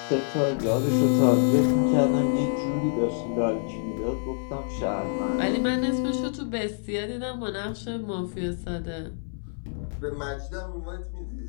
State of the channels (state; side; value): silent; right; 60 dB below the other